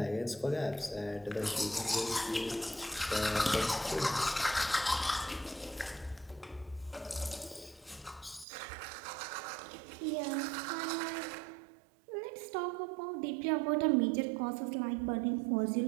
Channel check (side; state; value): left; drops out; at 8.5 s